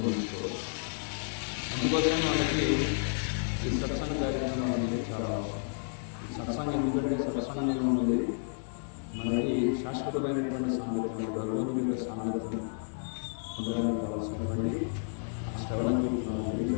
అందుకోసమే మనకి ఈ సత్సంగ కార్యక్రమం అనేది చాలా అవసరం. ఈ సత్సంగం ఎందుకంటే సత్సంగంలో ఉన్నది మనకి శాశ్వతమైనటువంటి సాంగత్యం, భగవంతుడి యొక్క సాంగత్యం పొందడానికి కావాల్సినటువంటి శ్రవణ కీర్తనాలు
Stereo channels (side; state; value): right; silent; digital silence